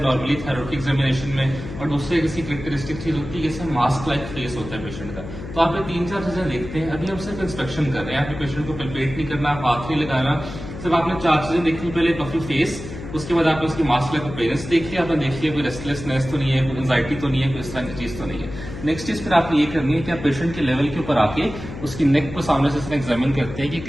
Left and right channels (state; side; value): noise; left; hum, 10 dB below the sound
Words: नॉर्मली थायराइड की एग्जामिनेशन में, और दूसरे किसी कैरेक्टरिस्टिक चीज होती है जैसे मास्क लाइक फेस होता है पेशेंट का। तो आप ये 3-4 चीजें देखते हैं। अभी हम सिर्फ इंस्पेक्शन कर रहे हैं, आपके पेशेंट को पल्पेट नहीं करना, हाथ नहीं लगाना, सिर्फ आपने 4 चीजें देखनी। पहले पफी फेस, उसके बाद आपने उसकी मास्क लाइक अपीयरेंस देख लिया, आपने देख लिया कोई रेस्टलेसनेस तो नहीं है, कोई एंजाइटी तो नहीं है, कोई इस तरह की चीज तो नहीं है। नेक्स्ट चीज फिर आपने ये करनी है कि आप पेशेंट के लेवल के ऊपर आके उसकी नेक को सामने से एग्जामिन करते हैं कि